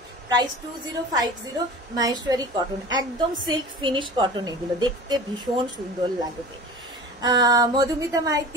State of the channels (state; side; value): normal; both; correlation 0.37